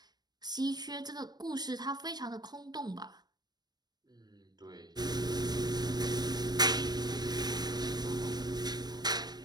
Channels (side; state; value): left; late; 0.19 ms